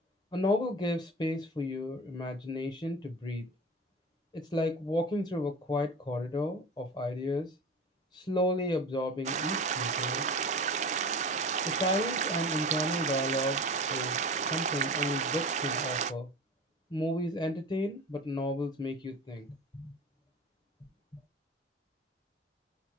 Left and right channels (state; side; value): normal; both; correlation 0.34